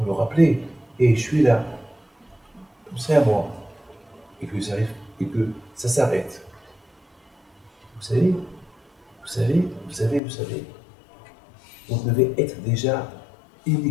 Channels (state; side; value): drops out; right; at 10.2 s